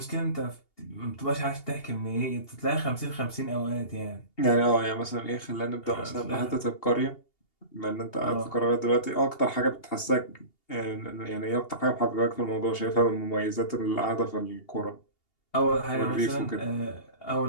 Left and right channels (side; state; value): right; late; 2.8 ms